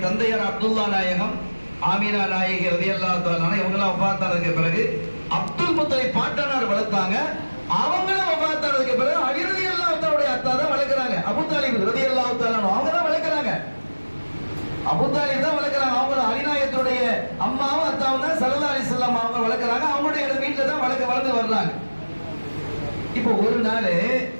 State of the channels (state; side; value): inverted; both; correlation -1.00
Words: தந்தையார் அப்துல்லா நாயகம், ஆமினா நாயகி ரலியல்லாஹு தஆலா அன்ஹா இவங்கெல்லாம் வஃபாத்தானதுக்கு பிறகு அப்துல் முத்தலிப் பாட்டனார் வளர்த்தாங்க. அவங்களும் வஃபாத்தானதுக்கு பிறகு அலி ரலியல்லாஹு தஆலாவுடைய அத்தா தான் வளர்க்கறாங்க. அபூ தாலிப் ரலியல்லாஹு தஆலா அன்ஹு அவங்க தான் வளர்க்கறாங்க. அபூ தாலிப் தான் வளர்க்கறாங்க. அவங்க அலி நாயகத்துடைய அம்மாவும் அத்தாவும் தான் ஸல்லல்லாஹு அலைஹி வஸல்லம் அவங்க வளர்க்கறாங்க. அவங்களுடைய வீட்ல தான் வளர்ந்து வர்றாங்க. இப்போ ஒரு நாள்